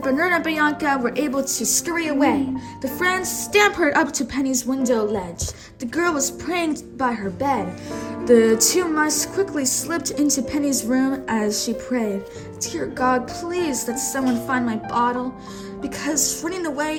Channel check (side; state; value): both; identical; correlation 1.00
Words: and Bianca were able to scurry away. The friends scampered up to Penny's window ledge. The girl was praying by her bed. The two mice quickly slipped into Penny's room as she prayed. Dear God, please let someone find my bottle, because running